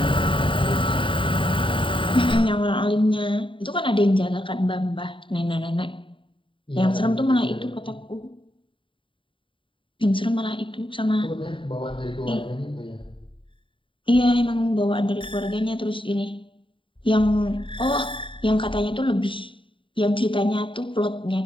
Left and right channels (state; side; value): late; right; 0.25 ms